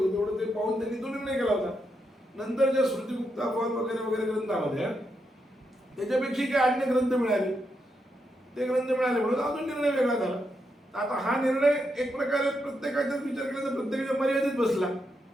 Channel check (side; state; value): both; normal; correlation 0.82